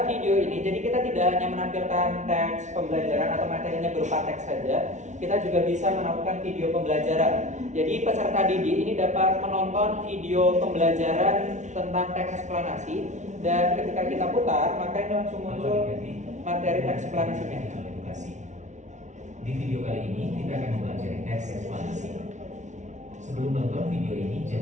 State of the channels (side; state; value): left; late; 0.35 ms